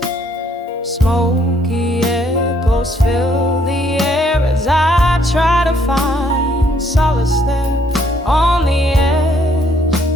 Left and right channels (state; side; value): normal; both; correlation 0.67